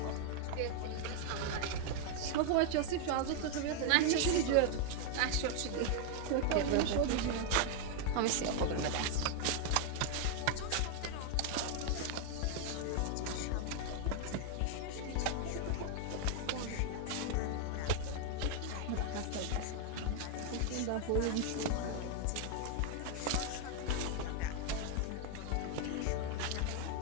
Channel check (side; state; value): both; different; correlation 0.00